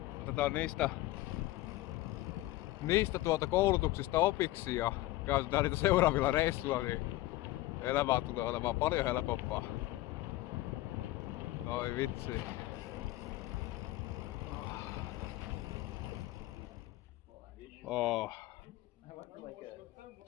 otetaan niistä koulutuksista opiksi ja käytetään niitä seuraavilla reissuilla, niin elämä tulee olemaan paljon helpompaa. Oi vitsi. Oh.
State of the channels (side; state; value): right; quieter; 17.4 dB